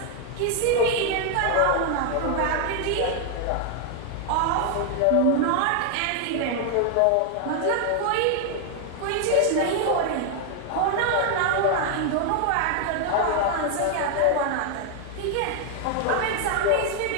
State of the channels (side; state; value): both; different; correlation 0.00